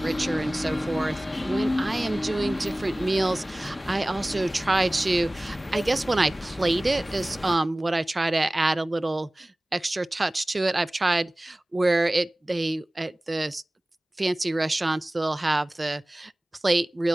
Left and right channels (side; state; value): both; normal; correlation 0.98